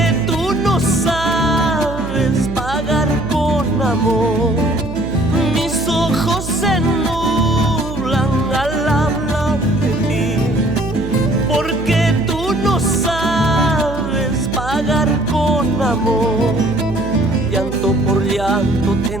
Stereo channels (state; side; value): noise; right; hum, 8 dB below the sound